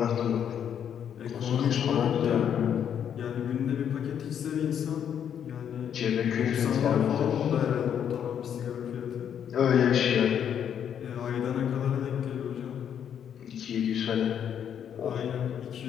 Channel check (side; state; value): right; quieter; 8.8 dB